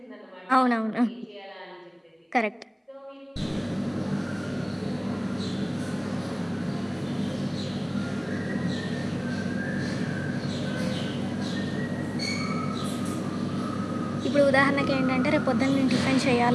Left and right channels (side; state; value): both; identical; correlation 1.00